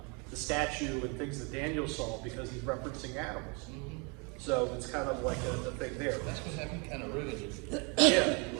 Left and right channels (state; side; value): quieter; left; 32.5 dB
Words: the statue and things that Daniel saw because he's referencing animals. So it's kind of like a thing there. That's what happened, kind of ruined it. Yeah.